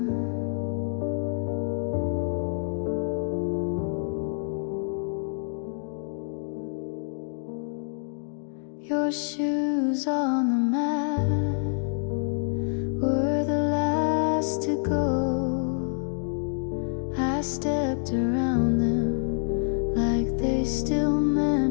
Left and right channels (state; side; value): silent; right; digital silence